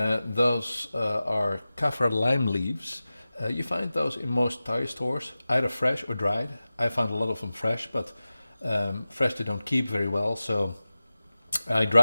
Those are kaffir lime leaves. You find those in most Thai stores, either fresh or dried. I found a lot of them fresh, but fresh they don't keep very well, so I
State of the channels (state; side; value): inverted; both; correlation -0.96